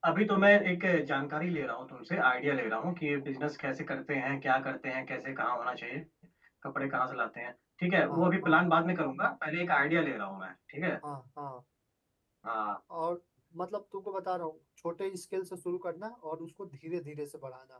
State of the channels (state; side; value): identical; both; correlation 1.00